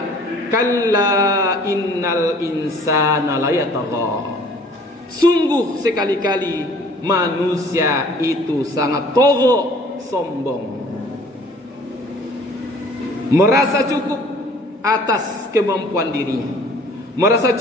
kalla innal insana layatagha. Sungguh sekali-kali manusia itu sangat togho, sombong, merasa cukup atas kemampuan dirinya, merasa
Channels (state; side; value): normal; both; correlation 0.52